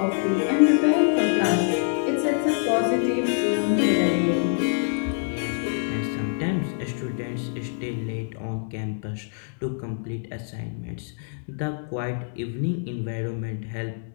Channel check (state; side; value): silent; right; digital silence